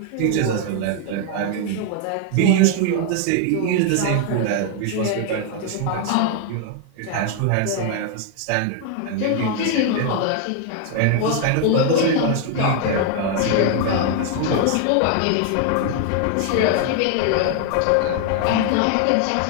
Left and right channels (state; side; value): different; both; correlation 0.00